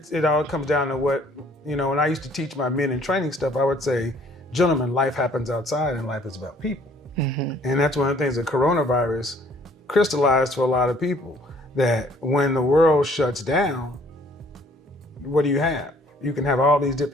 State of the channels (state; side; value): normal; both; correlation 0.59